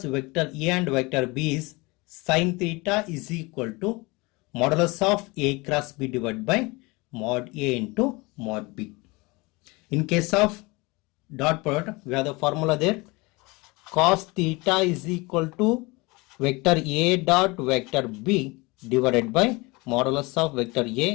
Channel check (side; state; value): right; quieter; 24.9 dB